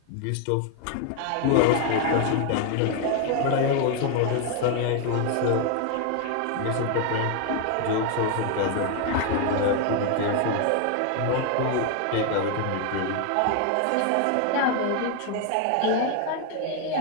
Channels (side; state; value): both; different; correlation 0.01